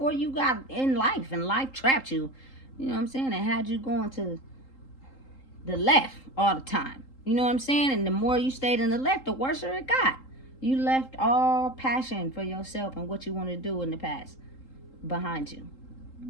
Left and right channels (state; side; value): late; right; 3.8 ms